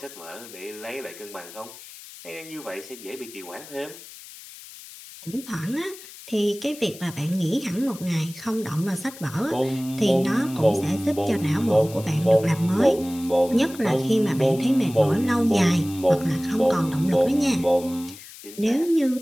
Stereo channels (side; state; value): left; noise; hiss, 17 dB below the sound